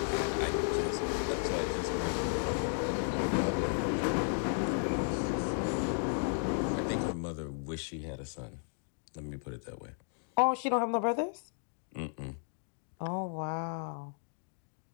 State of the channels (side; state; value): right; silent; digital silence